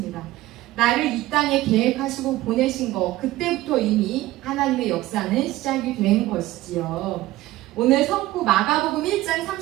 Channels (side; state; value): left; quieter; 16.8 dB